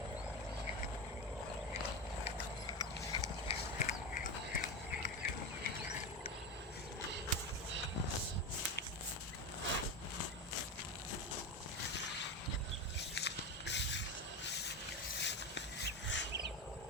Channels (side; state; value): both; normal; correlation 0.18